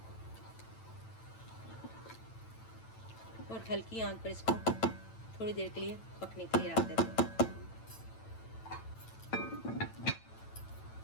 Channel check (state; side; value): late; right; 9.0 ms